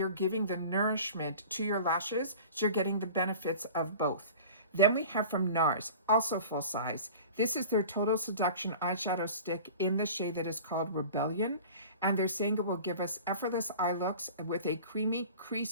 giving the nourishment to your lashes, so you're getting the benefits of both. Then we have from NARS, also full size. This is their Total Seduction eyeshadow stick in the shade that is called Rebellion. And they're saying it will give us effortless eye looks with a creamy,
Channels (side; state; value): both; inverted; correlation -0.40